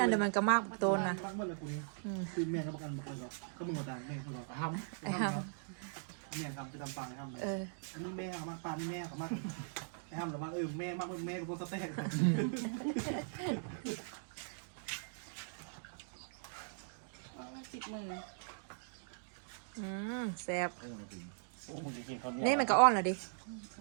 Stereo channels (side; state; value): left; silent; digital silence